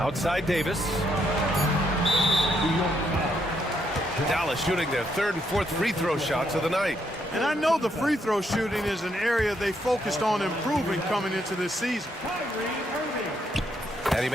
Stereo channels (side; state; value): both; normal; correlation 0.76